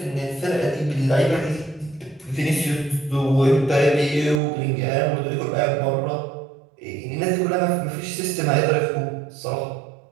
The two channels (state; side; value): drops out; left; at 4.4 s